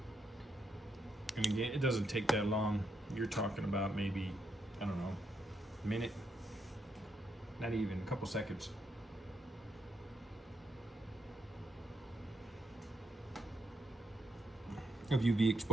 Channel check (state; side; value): normal; both; correlation 0.79